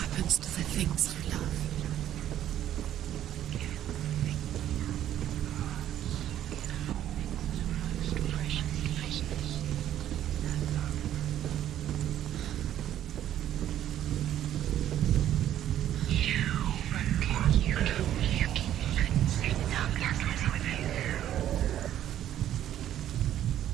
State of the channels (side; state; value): left; quieter; 11.6 dB